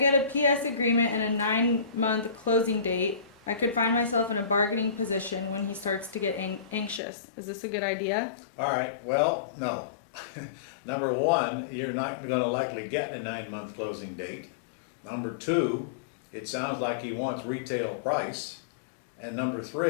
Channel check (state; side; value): drops out; right; at 7.0 s